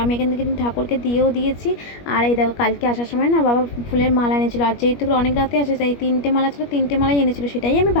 আমি এখান থেকে ঠাকুরকে দিয়েও দিয়েছি। আর এই দেখো, কালকে আসার সময় না বাবা ফুলের মালা এনেছিল, আর যেহেতু অনেক রাতে আসে তাই 3টে মালা ছিল, 3টে মালাই এনেছিল, সেটাই আমি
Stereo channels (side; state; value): right; late; 21 ms